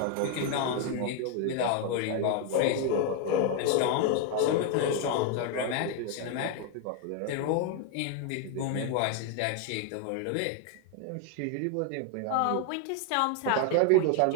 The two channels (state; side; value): different; both; correlation 0.01